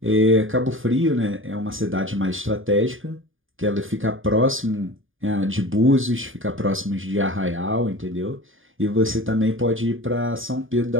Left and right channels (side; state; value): left; late; 0.58 ms